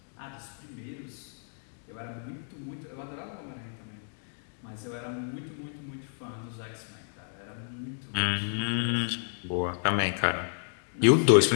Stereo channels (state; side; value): silent; right; digital silence